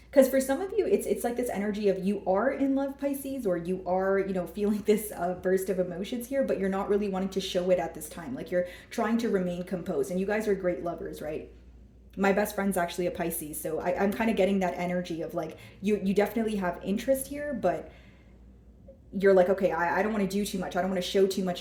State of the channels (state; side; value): identical; both; correlation 1.00